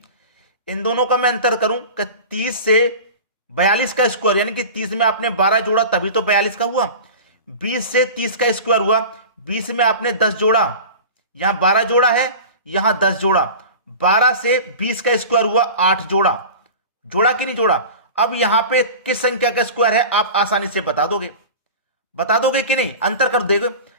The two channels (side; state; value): both; inverted; correlation -0.34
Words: इन दोनों का मैं अंतर करूं कि 30 से 42 का स्क्वायर, यानी कि 30 में आपने 12 जोड़ा तभी तो 42 का हुआ। 20 से 30 का स्क्वायर हुआ, 20 में आपने 10 जोड़ा, यहां 12 जोड़ा है, यहां 10 जोड़ा। 12 से 20 का स्क्वायर हुआ, 8 जोड़ा, जोड़ा कि नहीं जोड़ा। अब यहां पे किस संख्या का स्क्वायर है आप आसानी से बता दोगे, बता दोगे कि नहीं, अंतर कर देगा।